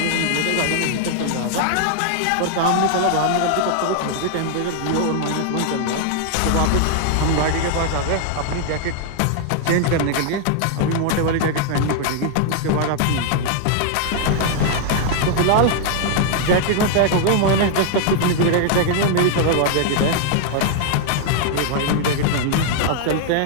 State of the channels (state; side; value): different; both; correlation 0.00